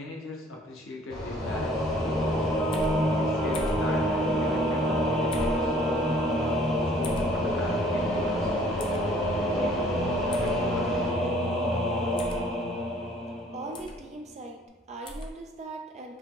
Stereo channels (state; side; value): normal; both; correlation 0.56